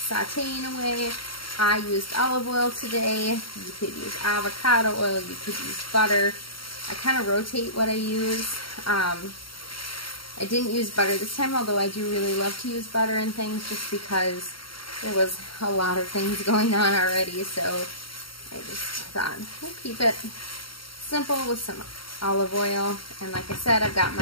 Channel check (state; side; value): late; right; 0.74 ms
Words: sauteing away. I used olive oil today. You could use avocado oil. You could use butter. I kind of rotate what I use. I didn't use butter this time, although I do really love to use butter and things, just because there was a lot of things going on already. So I just thought we'll keep it simple with some olive oil. And like I said, I've got